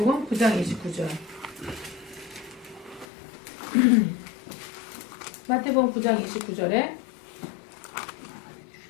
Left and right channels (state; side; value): drops out; right; at 3.1 s